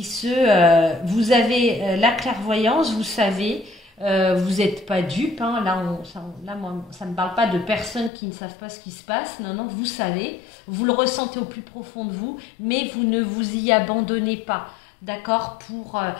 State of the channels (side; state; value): right; drops out; at 8.1 s